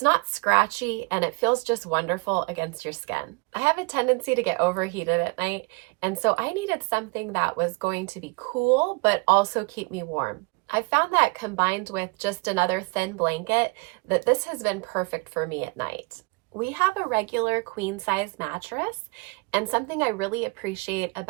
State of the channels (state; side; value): quieter; left; 29.3 dB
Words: not scratchy, and it feels just wonderful against your skin. I have a tendency to get overheated at night, and so I needed something that was going to be cool, but also keep me warm. I found that combined with just another thin blanket, that this has been perfect for me at night. We have a regular queen size mattress, and something I really appreciate